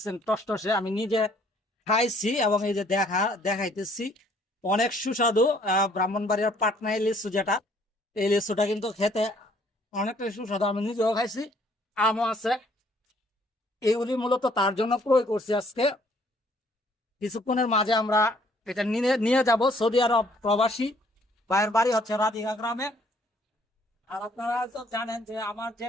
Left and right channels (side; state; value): both; normal; correlation 0.62